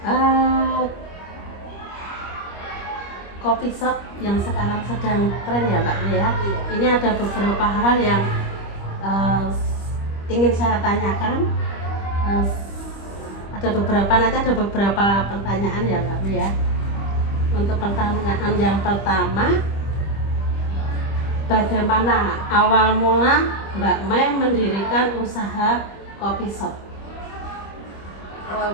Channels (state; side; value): late; right; 25 ms